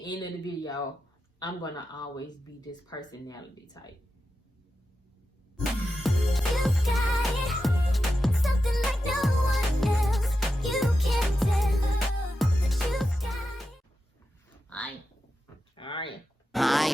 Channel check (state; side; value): normal; both; correlation 0.90